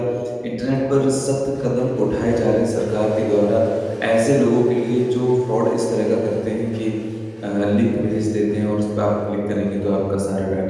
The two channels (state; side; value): identical; both; correlation 1.00